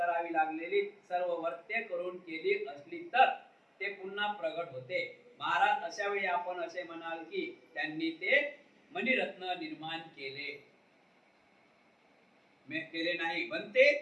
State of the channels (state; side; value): identical; both; correlation 1.00